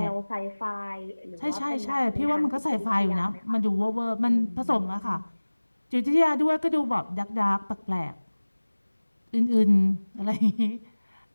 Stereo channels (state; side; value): inverted; both; correlation -1.00